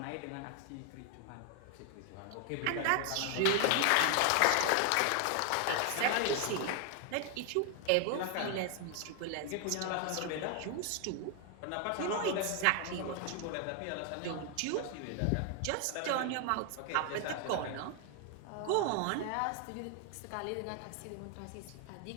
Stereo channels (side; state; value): both; different; correlation 0.00